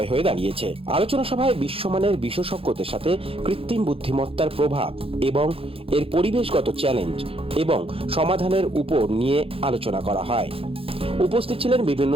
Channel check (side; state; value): left; late; 0.27 ms